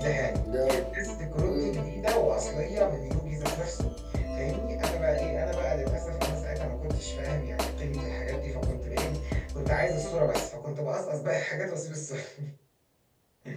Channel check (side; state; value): both; identical; correlation 1.00